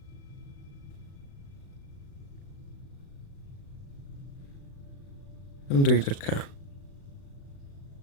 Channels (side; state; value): right; late; 36 ms